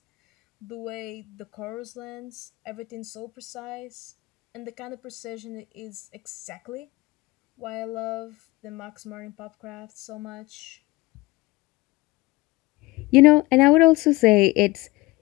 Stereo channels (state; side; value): quieter; right; 21.0 dB